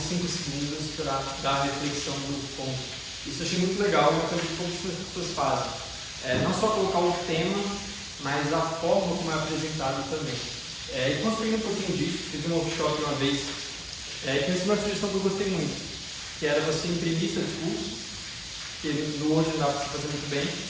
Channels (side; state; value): both; identical; correlation 1.00